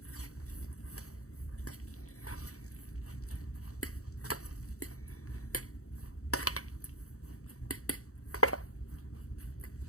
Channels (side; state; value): right; late; 0.65 ms